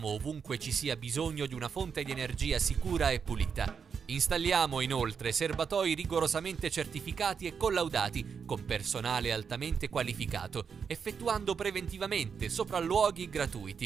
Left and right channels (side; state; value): left; quieter; 6.4 dB